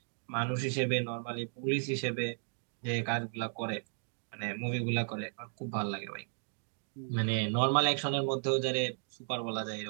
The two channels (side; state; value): left; silent; digital silence